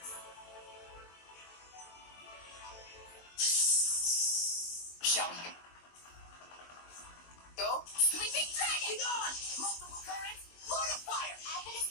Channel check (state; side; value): late; right; 23 ms